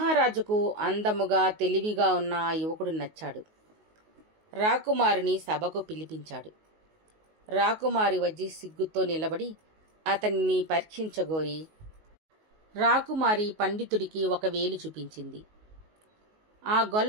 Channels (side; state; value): left; late; 19 ms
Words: అందముగా తెలివిగా ఉన్న ఆ యువకుడు నచ్చాడు. రాకుమారిని సభకు పిలిపించాడు. రాకుమారి వచ్చి సిగ్గుతో నిలబడి అతన్ని పరీక్షించగోరి రాకుమారి పండితుడికి 1 వేలు చూపించింది. ఆ